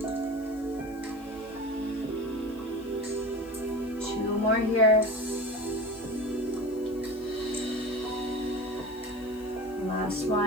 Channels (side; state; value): left; noise; hiss, 25 dB below the sound